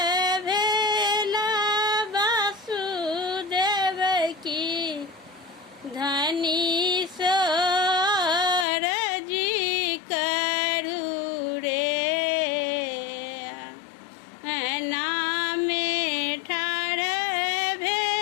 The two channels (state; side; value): drops out; right; at 8.7 s